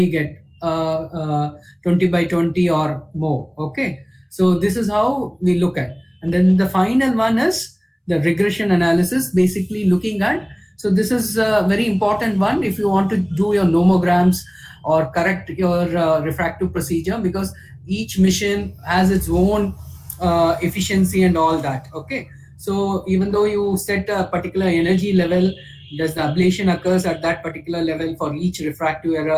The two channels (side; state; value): both; identical; correlation 1.00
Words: get 20 by 20 or more. Okay. So this is how we look at. And then the final one is the regression analysis, basically looking at, so this is a very important one if you want to do your nomograms or correct your refractive procedure, because each mission has its own efficiency and all that. Okay. So even though you set a particular energy level, does the ablation occurs at that particular level for each refractive